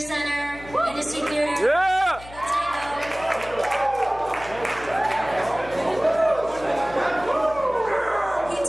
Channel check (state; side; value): noise; left; hum, 18 dB below the sound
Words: Industry Theater. Yeah! He